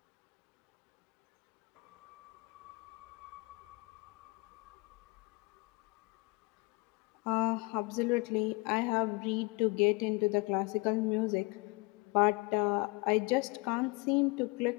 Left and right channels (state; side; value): quieter; right; 27.4 dB